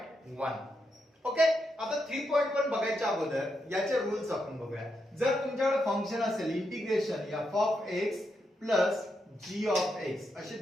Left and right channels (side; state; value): both; normal; correlation 0.83